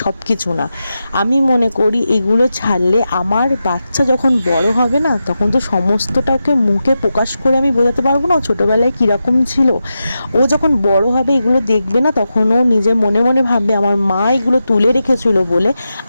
সব কিছু না। আমি মনে করি এগুলো ছাড়লে আমার বাচ্চা যখন বড় হবে না, তখন তো সমস্তটাকে মুখে প্রকাশ করে আমি বোঝাতে পারবো না ও ছোটোবেলায় কীরকম ছিল। ও যখন বড় হবে এগুলো দেখবে না, তখন ও নিজে মনে মনে ভাববে আমার মা এগুলো তুলে রেখেছিল বলে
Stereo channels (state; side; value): inverted; both; correlation -0.90